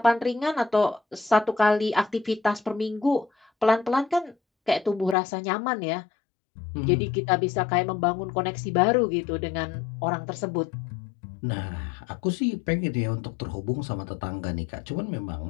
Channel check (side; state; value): right; drops out; at 5.2 s